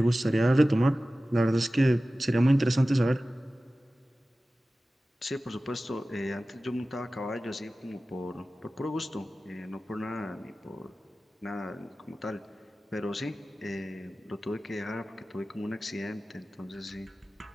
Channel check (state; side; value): normal; both; correlation 0.96